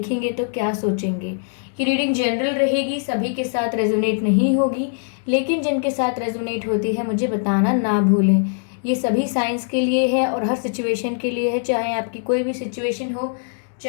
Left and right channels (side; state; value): right; silent; digital silence